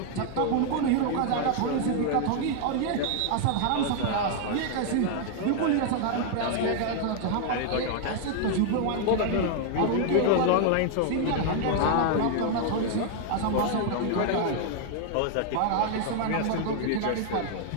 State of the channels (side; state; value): both; different; correlation 0.00